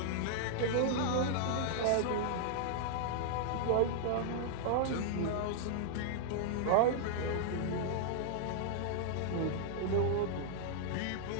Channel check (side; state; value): both; different; correlation -0.01